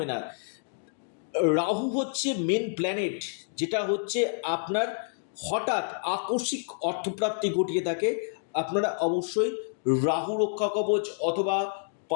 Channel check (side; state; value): right; silent; digital silence